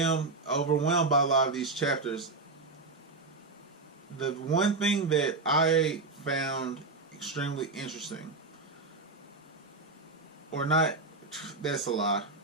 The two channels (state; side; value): quieter; left; 3.5 dB